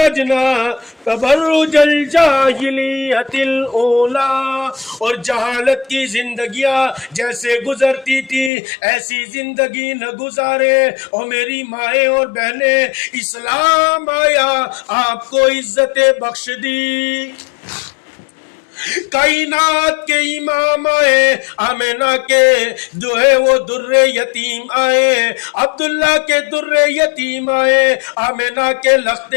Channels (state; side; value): drops out; right; at 8.5 s